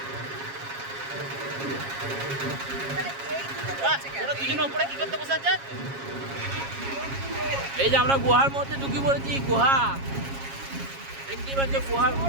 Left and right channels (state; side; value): late; left; 7.3 ms